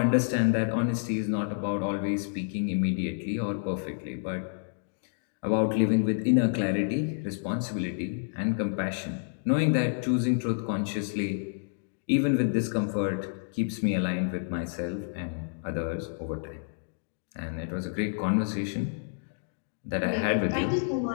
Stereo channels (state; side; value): silent; right; digital silence